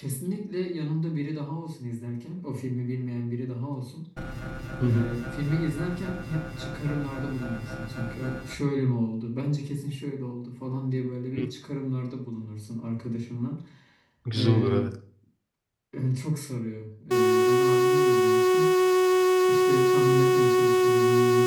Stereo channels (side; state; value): both; identical; correlation 1.00